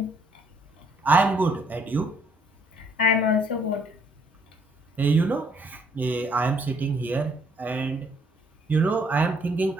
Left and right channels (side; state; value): both; normal; correlation 0.66